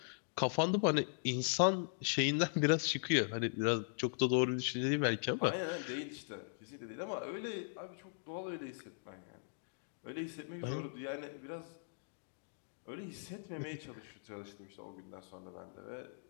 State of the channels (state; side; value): silent; right; digital silence